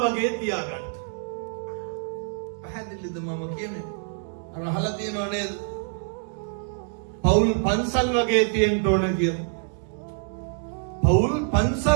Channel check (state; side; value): silent; left; 60 dB below the other